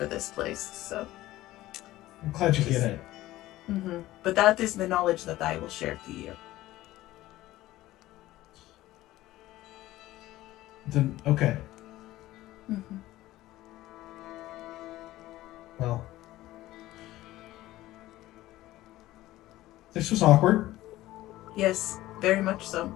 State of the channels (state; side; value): quieter; right; 16.2 dB